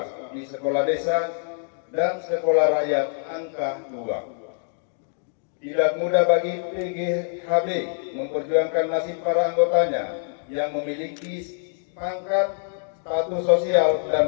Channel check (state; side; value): silent; right; digital silence